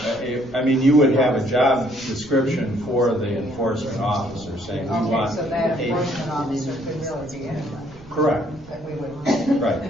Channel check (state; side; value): noise; right; rumble, 21 dB below the sound